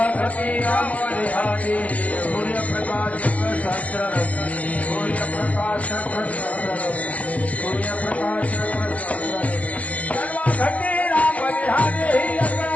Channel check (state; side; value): late; right; 0.066 ms